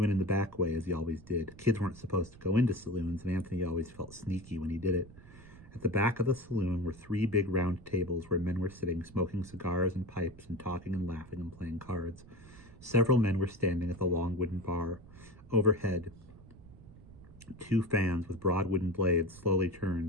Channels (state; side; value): noise; right; rumble, 20 dB below the sound